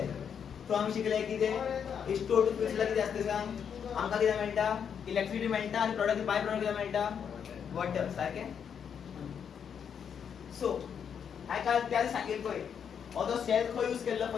So आम्ही शिकले की ते H2O2 फ्यूल सेल किती असते सांग आमका किती मिळता इलेक्ट्रिसिटी मिळता आणि प्रोडक्ट बाय प्रोडक्ट किती मिळता वॉटर सारखे. सो हाय काय त्याला सांगितलोय ऑदो सेल खो यूज केलं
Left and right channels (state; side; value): quieter; right; 7.6 dB